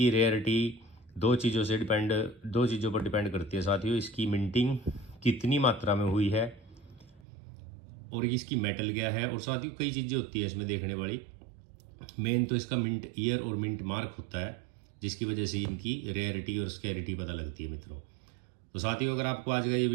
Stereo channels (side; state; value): left; drops out; at 7.2 s